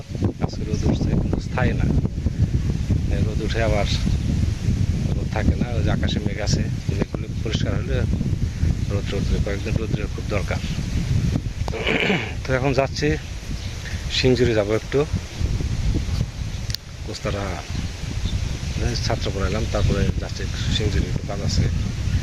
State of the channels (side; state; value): both; identical; correlation 1.00